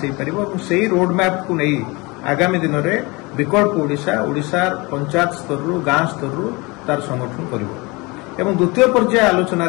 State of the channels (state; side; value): quieter; right; 25.6 dB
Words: हो पार से रोड मैप को नहीं आगामी दिन में विकल्प ओडिशार पंचायत स्तर रु गाँ स्तर रु तार संगठन करिवो एवं द्वितीय पर्याय आलोचना